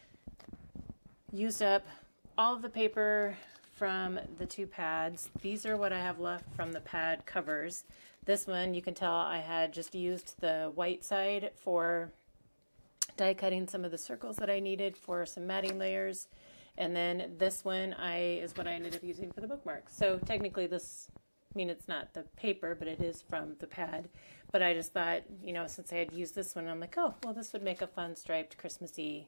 used up all of the paper from the 2 pads. These are what I have left from the pad covers. This one, you can tell I had just used the white side for die cutting some of the circles that I needed for some matting layers, and then this one is what I ended up using for the bookmarks. So technically this, I mean, it's not the paper, but it is from the pad. But I just thought, you know, since I had used this one, I'm like, oh, well, this would make a fun striped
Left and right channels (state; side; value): inverted; both; correlation -1.00